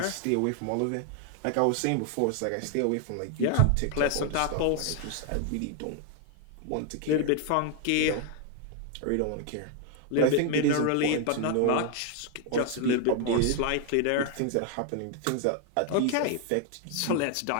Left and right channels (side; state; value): both; different; correlation 0.00